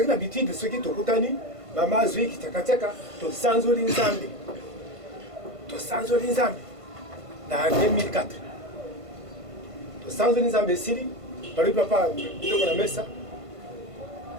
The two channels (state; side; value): late; left; 1.5 ms